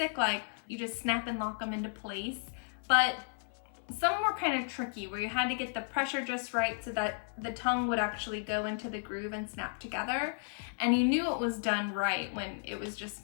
like you just snap and lock them into place, but some were kind of tricky where you had to get the pressure just right so that the tongue would actually go into the groove and snap together. And you knew it was done right when it was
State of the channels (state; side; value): silent; right; 55 dB below the other